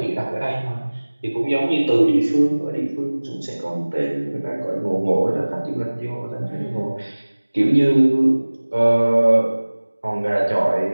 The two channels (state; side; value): inverted; both; correlation -1.00